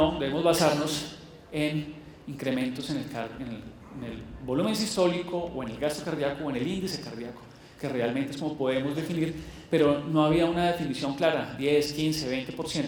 debemos basarnos en incrementos en el volumen sistólico o en el gasto cardíaco o en el índice cardíaco, que realmente es como podemos definir, pero no había una definición clara, 10, 15,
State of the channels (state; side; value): identical; both; correlation 1.00